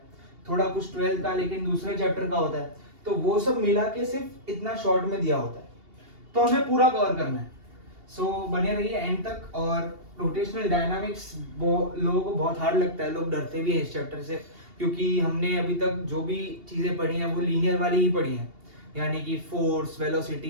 थोड़ा कुछ 12th का, लेकिन दूसरे चैप्टर का होता है। तो वो सब मिला के सिर्फ इतना शॉर्ट में दिया होता है, तो हमें पूरा कवर करना है। सो बने रहिए एंड तक। और रोटेशनल डायनामिक्स लोगों को बहुत हार्ड लगता है, लोग डरते भी हैं इस चैप्टर से, क्योंकि हमने अभी तक जो भी चीज़ें पढ़ी हैं वो लीनियर वाली ही पढ़ी हैं। यानी कि force,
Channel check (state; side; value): late; left; 2.8 ms